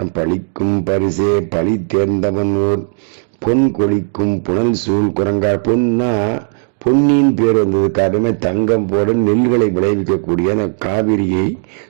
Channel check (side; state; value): left; silent; digital silence